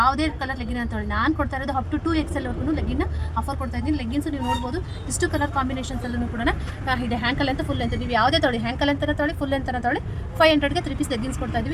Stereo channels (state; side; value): identical; both; correlation 1.00